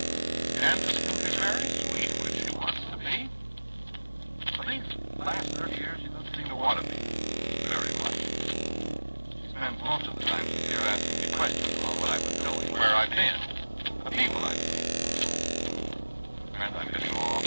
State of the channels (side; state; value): both; inverted; correlation -1.00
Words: Candace can be very sweet when she wants to be. But these last 30 years, she doesn't seem to want to be very much. She spends most of the time she's here asking me questions about what I've been doing, where I've been, the people I've seen. Friends, I'm getting